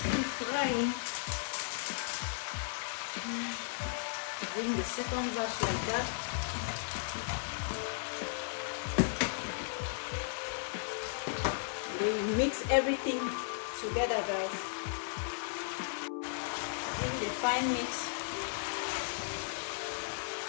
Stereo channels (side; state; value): right; silent; 54 dB below the other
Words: frying. Bring the second batch like that. And then you mix everything together, guys. Give it a fine mix.